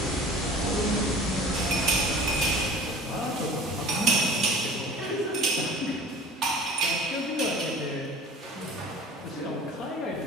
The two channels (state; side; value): normal; both; correlation 0.43